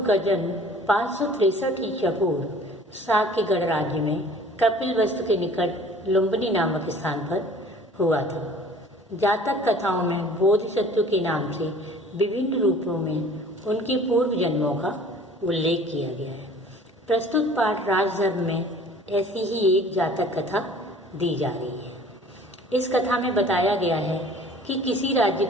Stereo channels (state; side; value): normal; both; correlation 0.49